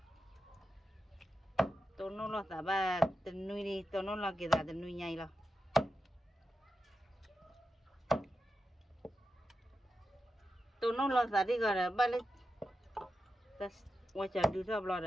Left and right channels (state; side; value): normal; both; correlation 0.90